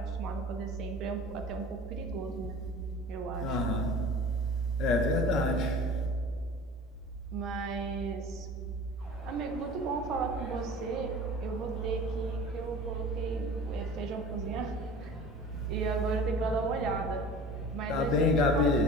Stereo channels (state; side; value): normal; both; correlation 0.41